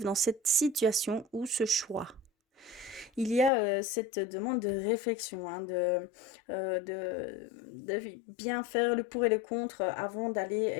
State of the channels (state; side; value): drops out; right; at 3.5 s